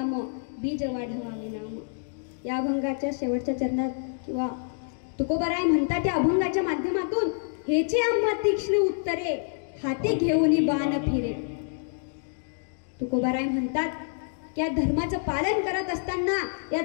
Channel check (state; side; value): silent; right; digital silence